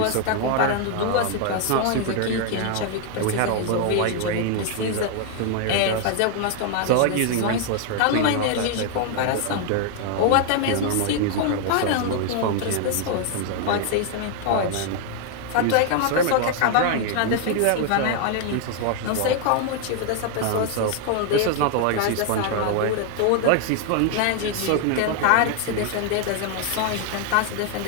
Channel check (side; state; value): both; different; correlation 0.00